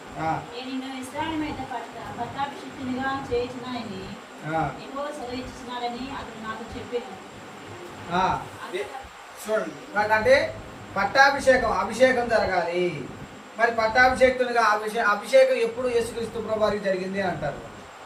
నేను నిన్ను ఇశ్రాయేలు మీద పట్టాభిషిక్తునిగా చేయించినాయని ఎక్కువ సెలవిస్తున్నాడని అతను నాకు చెప్పాను. చూడండి, అంటే అభిషేకం జరగాలి. మరి పట్టాభిషేక్తునిగా అభిషేకం ఎప్పుడు యేసుక్రీస్తు ప్రభువారికి జరిగింది అని అంటారు.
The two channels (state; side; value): identical; both; correlation 1.00